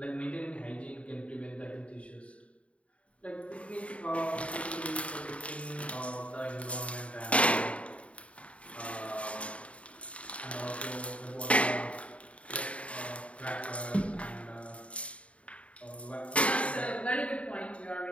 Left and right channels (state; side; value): late; right; 0.064 ms